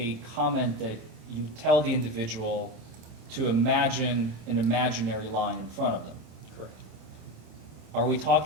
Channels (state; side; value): late; left; 27 ms